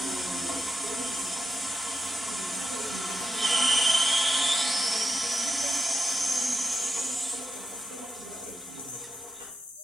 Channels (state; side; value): normal; both; correlation 0.87